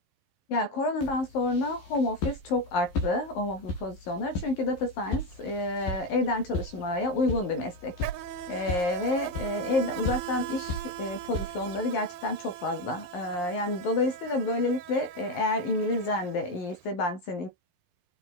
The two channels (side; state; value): right; late; 11 ms